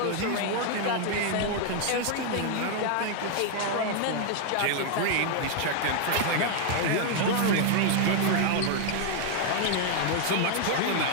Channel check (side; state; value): both; different; correlation 0.00